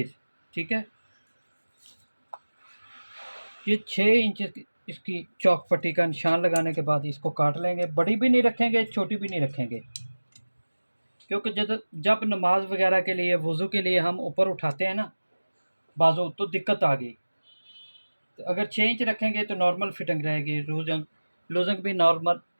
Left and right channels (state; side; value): inverted; both; correlation -1.00